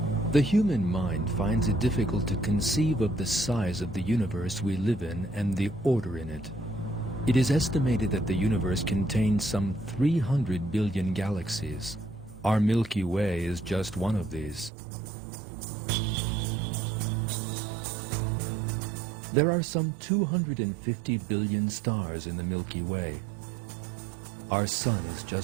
The human mind finds it difficult to conceive of the size of the universe we live in and the order in it. It is estimated that the universe contains some 300 billion galaxies. Our Milky Way is just one of these. There are some 250 billion stars in the Milky Way. Our Sun is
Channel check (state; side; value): drops out; left; at 14.7 s